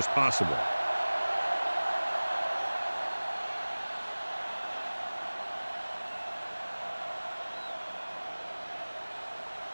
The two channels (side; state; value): both; inverted; correlation -1.00